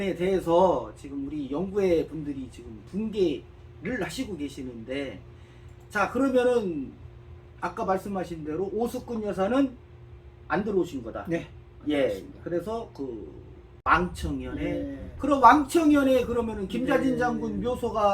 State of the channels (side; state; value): both; identical; correlation 1.00